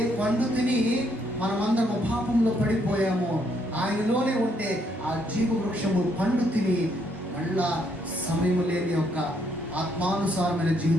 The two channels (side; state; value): both; normal; correlation 0.72